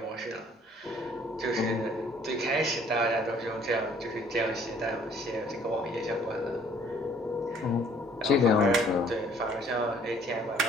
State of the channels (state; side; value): normal; both; correlation 0.59